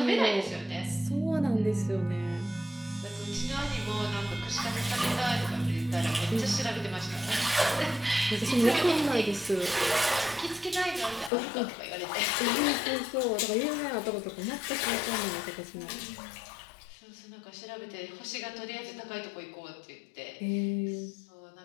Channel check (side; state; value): right; drops out; at 11.3 s